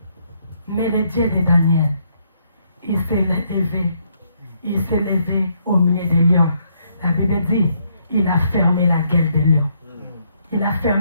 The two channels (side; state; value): both; inverted; correlation -0.72